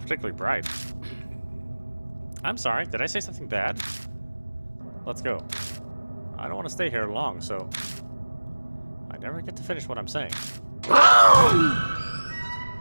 particularly bright. I'm sorry, did I say something bad? Let's go. I don't want to stay here long, so I never get to finish what I'm saying.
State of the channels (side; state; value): both; inverted; correlation -1.00